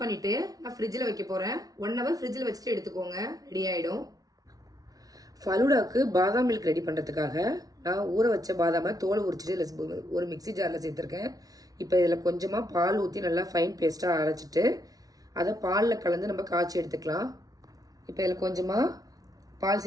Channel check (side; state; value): left; late; 0.18 ms